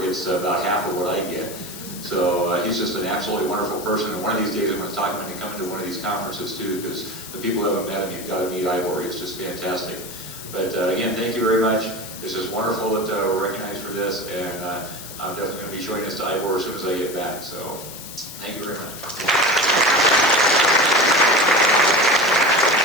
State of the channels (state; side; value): noise; left; hiss, 12 dB below the sound